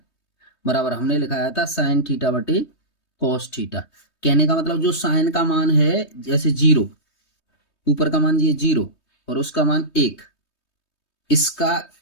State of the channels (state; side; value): late; right; 3.2 ms